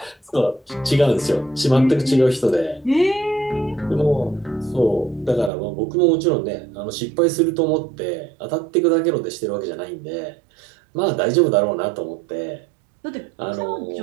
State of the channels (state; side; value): drops out; left; at 5.5 s